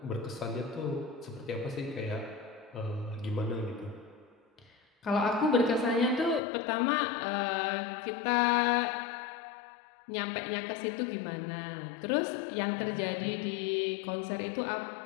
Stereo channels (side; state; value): right; drops out; at 6.4 s